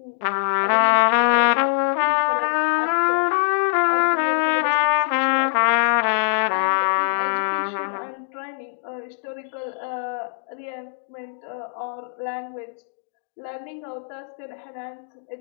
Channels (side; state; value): right; silent; digital silence